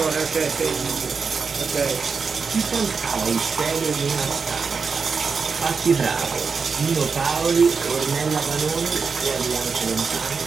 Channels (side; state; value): left; quieter; 5.2 dB